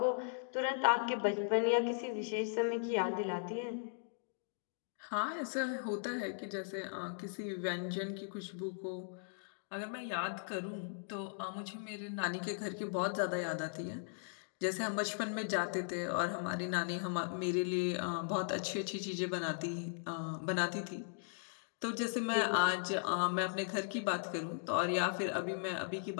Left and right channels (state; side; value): silent; right; digital silence